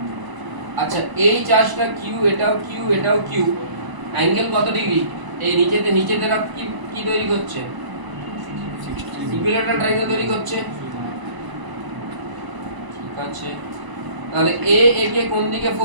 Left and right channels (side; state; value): left; late; 1.0 ms